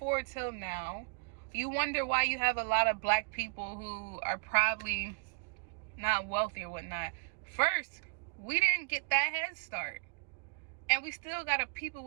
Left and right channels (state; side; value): quieter; left; 33.4 dB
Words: till now, you wonder why you have a lot of black people who are probably not wealthy or whatnot. First, we didn't get that head start. And we still got a people